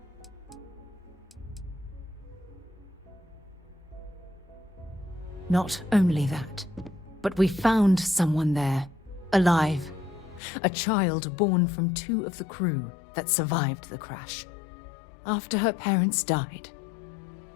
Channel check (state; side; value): drops out; right; at 10.4 s